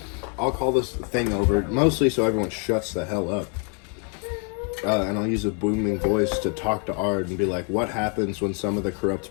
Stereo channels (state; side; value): quieter; right; 38.9 dB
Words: I'll call this thing over, mostly so everyone shuts the hell up. And I'll use a booming voice to talk to Ard and be like, what happens when some of the corrupt